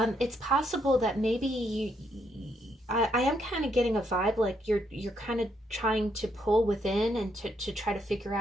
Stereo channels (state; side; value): normal; both; correlation 0.75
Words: possible that maybe I am kind of getting a vibe like you're kind of trying to pull within and to try to figure